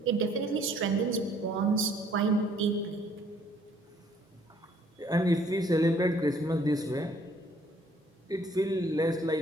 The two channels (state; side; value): normal; both; correlation 0.62